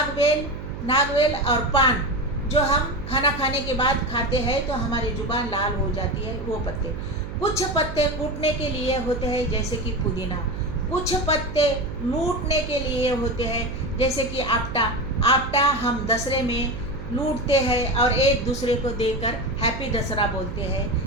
और पान, जो हम खाना खाने के बाद खाते हैं तो हमारी जुबान लाल हो जाती है, वो पत्ते। कुछ पत्ते कूटने के लिए होते हैं, जैसे कि पुदीना। कुछ पत्ते लूटने के लिए होते हैं, जैसे कि आपटा हम दसरे में लूटते हैं और एक दूसरे को देकर हैप्पी दसरा बोलते हैं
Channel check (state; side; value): noise; right; hum, 9 dB below the sound